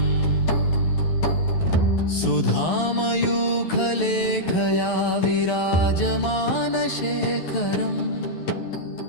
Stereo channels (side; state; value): right; late; 11 ms